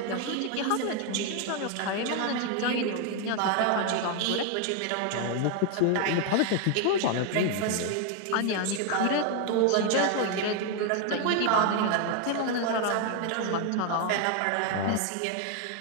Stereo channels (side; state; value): both; different; correlation 0.01